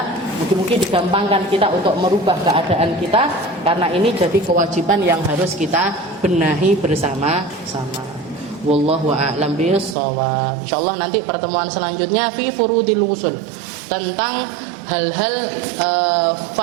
mungkin-mungkin digampangkan kita untuk merubah keadaan kita, karena ini jadi kewajiban yang harus kita benahi bersama-sama. Wallahu a'lam bishawab. Insyaallah nanti pertemuan selanjutnya fi furudil ghusl, tentang hal-hal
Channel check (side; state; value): left; drops out; at 10.0 s